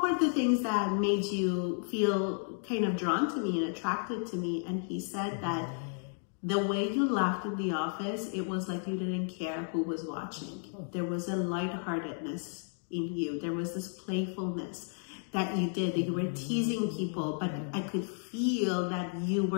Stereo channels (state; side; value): silent; right; 55 dB below the other